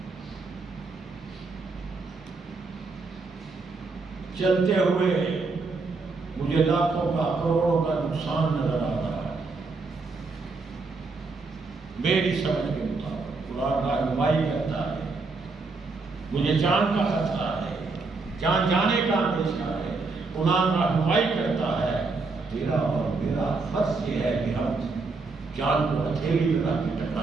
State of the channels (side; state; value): left; quieter; 4.0 dB